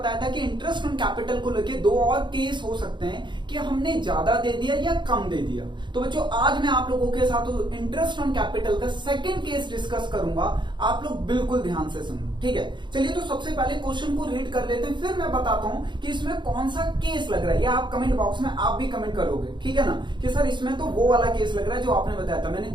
था कि इंटरेस्ट ऑन कैपिटल को लेके दो और केस हो सकते हैं कि हमने ज्यादा दे दिया या कम दे दिया। तो बच्चों आज मैं आप लोगों के साथ इंटरेस्ट ऑन कैपिटल का सेकंड केस डिस्कस करूंगा, आप लोग बिल्कुल ध्यान से सुनो, ठीक है। चलिए तो सबसे पहले क्वेश्चन को रीड कर लेते हैं, फिर मैं बताता हूं कि इसमें कौन सा केस लग रहा है, या आप कमेंट बॉक्स में आप भी कमेंट करोगे, ठीक है ना, कि सर इसमें तो वो वाला केस लग रहा है जो आपने बताया था। मैंने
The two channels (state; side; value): late; left; 0.22 ms